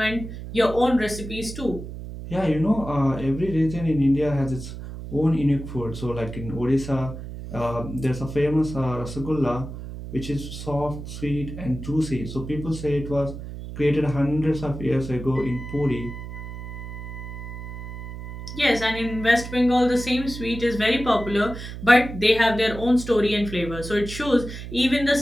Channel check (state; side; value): noise; right; hum, 10 dB below the sound